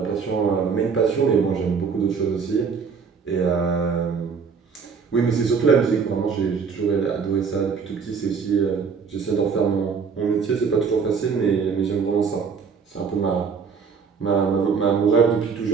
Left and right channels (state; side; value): quieter; left; 5.8 dB